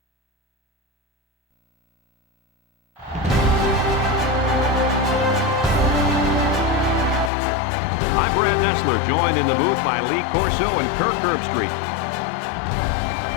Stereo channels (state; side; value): drops out; right; at 7.3 s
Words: I'm Brad Nessler, joined in the booth by Lee Corso and Kirk Herbstreit.